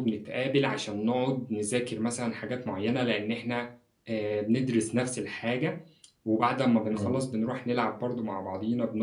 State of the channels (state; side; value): identical; both; correlation 1.00